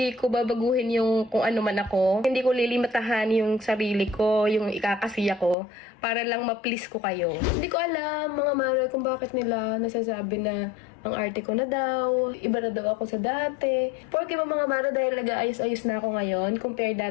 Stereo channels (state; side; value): drops out; right; at 5.6 s